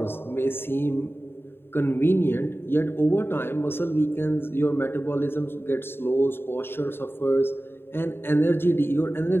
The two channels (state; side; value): late; right; 0.11 ms